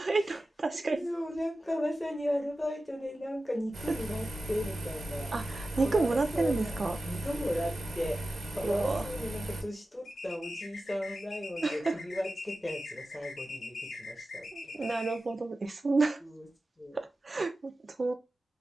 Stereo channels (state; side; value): normal; both; correlation 0.94